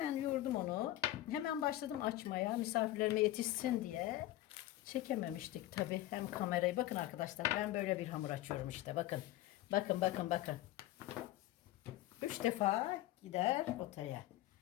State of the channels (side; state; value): right; quieter; 15.3 dB